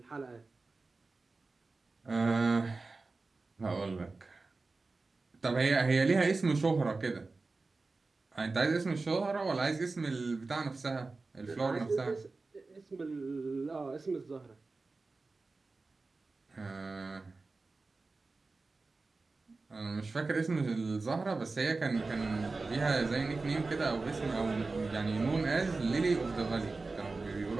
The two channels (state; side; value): quieter; left; 3.7 dB